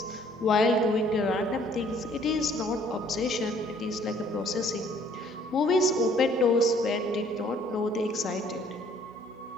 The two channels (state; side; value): normal; both; correlation 0.60